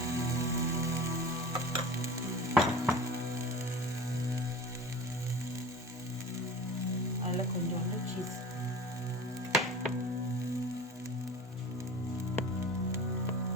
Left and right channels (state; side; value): normal; both; correlation 0.37